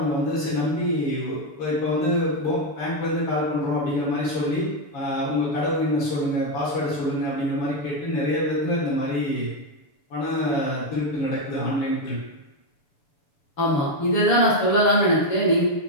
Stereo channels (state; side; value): late; right; 7.0 ms